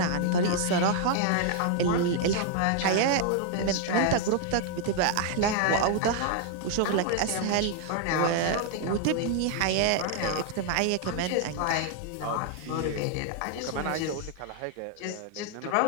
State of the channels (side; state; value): both; different; correlation 0.00